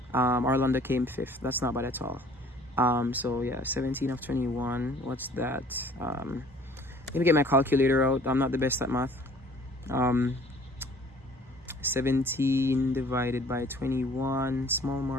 Orlando came 5th. That's not bad at all. So yeah, 17 of 21. What's that? Let me get my calculator out. I'm not the best at math. 17 divided by 21. Small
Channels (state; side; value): normal; both; correlation 0.53